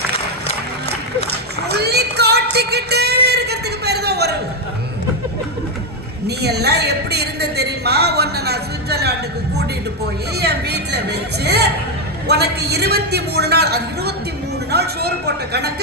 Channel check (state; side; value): normal; both; correlation 0.04